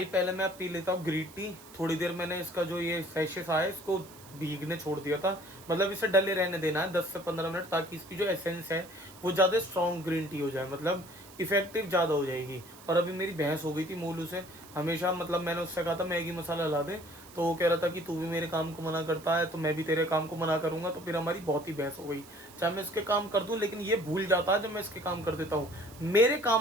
पहले मैं पी लेता हूँ ग्रीन टी। थोड़ी देर मैंने इसका जो ये सैशेस आया इसको भीगने छोड़ दिया था, मतलब इसे डले रहने देना है 10 से 15 मिनट, ताकि इसकी जो एसेंस है वो ज्यादा स्ट्रॉन्ग ग्रीन टी हो जाए, मतलब इफेक्टिव ज्यादा हो जाएगी। और अभी मेरी बहस हो गई थी मोलू से, हमेशा मतलब मैंने उससे कहा था मैगी मसाला ला दे, तो वो कह रहा था कि तू भी मेरे काम को मना करता है तो मैं भी तेरे काम को मना करूंगा, तो फिर हमारी बहुत ही बहस हो गई। चाहे मैं इसके काम कर दूं, लेकिन ये भूल जाता है जब मैं इसके काम कर देता हूँ। मेरे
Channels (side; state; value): right; noise; hiss, 20 dB below the sound